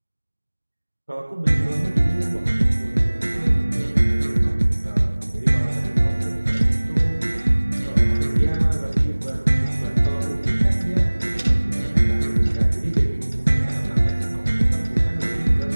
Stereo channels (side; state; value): both; inverted; correlation -1.00